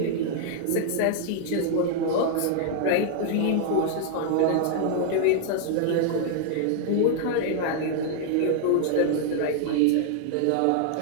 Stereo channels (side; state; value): both; different; correlation 0.00